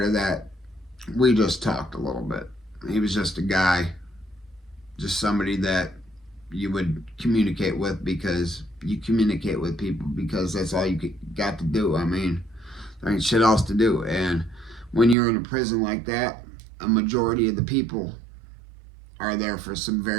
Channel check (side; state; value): left; drops out; at 15.2 s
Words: to that. We just talked a little bit. He was just a guy, just somebody that you would communicate with because you communicate with people because that's all you got to do. I mean, there ain't shit else to do. And when you're in a prison like that, a majority of the people are there for some